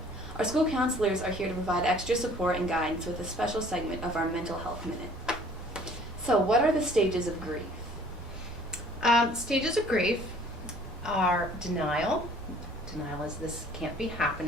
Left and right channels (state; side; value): normal; both; correlation 0.53